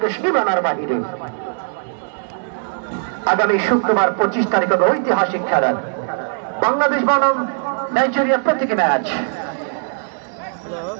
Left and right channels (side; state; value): left; silent; digital silence